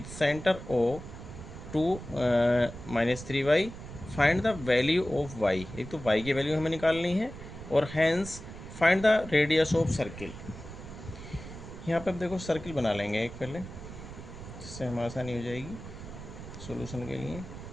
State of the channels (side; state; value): right; noise; rumble, 12 dB below the sound